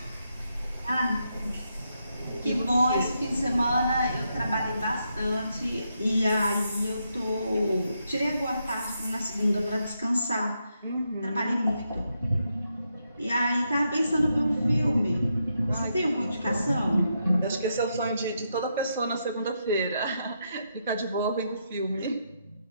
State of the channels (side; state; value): both; inverted; correlation -0.81